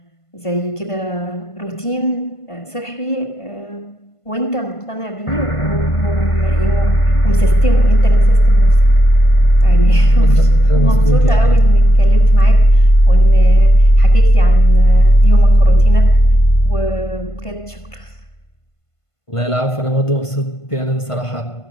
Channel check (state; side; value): late; right; 1.5 ms